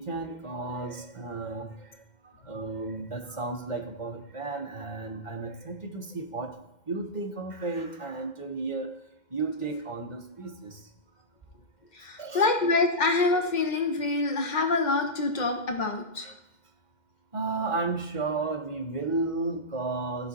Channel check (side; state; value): right; late; 2.1 ms